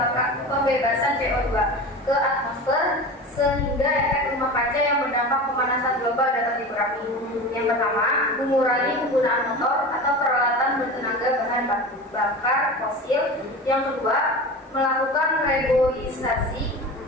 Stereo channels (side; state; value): both; normal; correlation 0.31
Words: pembebasan CO2 ke atmosfer sehingga efek rumah kaca yang berdampak pemanasan global dapat dikurangi. Yang pertama, mengurangi penggunaan motor atau peralatan bertenaga bahan bakar fosil. Yang kedua, melakukan reboisasi